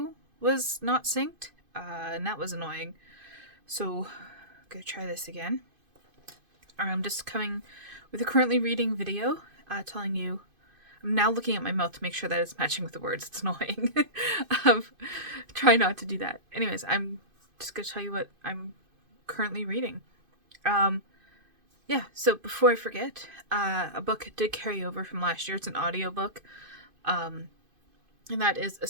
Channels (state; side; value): late; left; 2.5 ms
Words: was not synced, and that was annoying. So I'm gonna try this again. I'm just coming with a currently reading video, telling you. I'm now looking at my mouth to make sure that it's matching with the words. It's annoying. Try not to do that. Anyways, I'm just gonna tell you what I'm currently reading. Yeah, so before I forget, a book did carry over from last year. It's an audiobook. And that is A